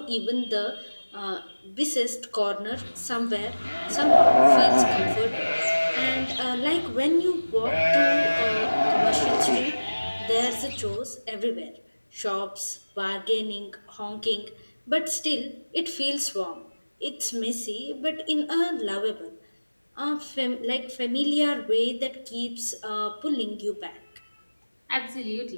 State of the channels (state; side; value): inverted; both; correlation -1.00